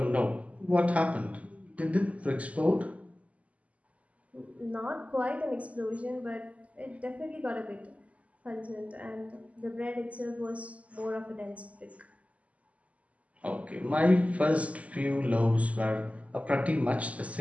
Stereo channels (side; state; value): left; late; 0.068 ms